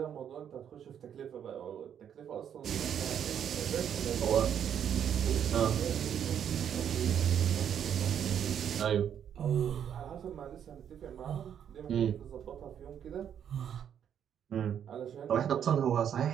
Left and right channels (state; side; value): quieter; left; 8.9 dB